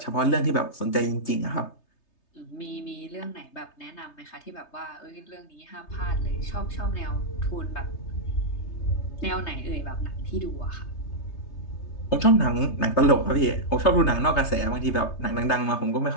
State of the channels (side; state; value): right; late; 3.3 ms